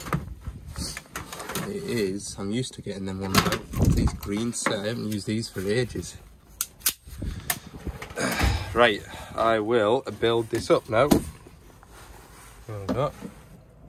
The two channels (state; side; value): identical; both; correlation 1.00